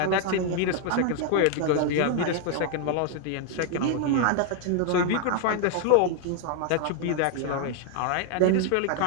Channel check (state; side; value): different; both; correlation 0.00